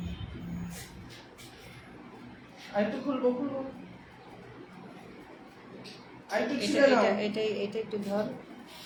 আরেকটু খুলবো খুলবো। আরেকটু এটা ছিঁড়ে নাও। এটা এটা এটা একটু ধর,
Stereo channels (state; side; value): identical; both; correlation 1.00